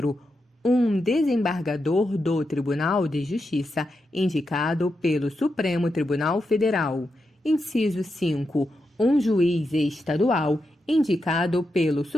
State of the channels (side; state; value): both; normal; correlation 0.86